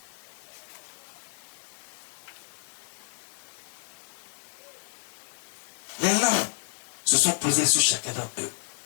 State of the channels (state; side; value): silent; right; 58 dB below the other